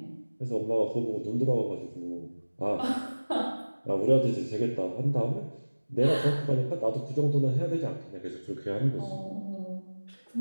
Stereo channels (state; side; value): inverted; both; correlation -1.00